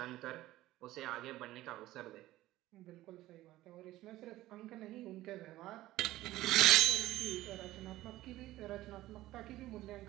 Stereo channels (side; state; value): left; quieter; 16.0 dB